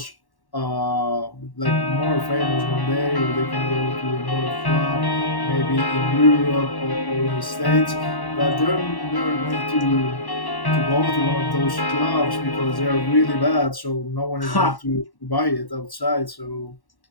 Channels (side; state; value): right; late; 1.1 ms